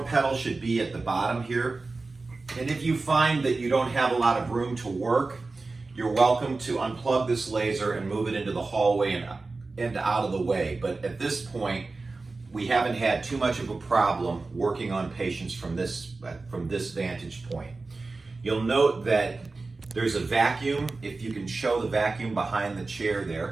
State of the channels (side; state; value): left; quieter; 3.7 dB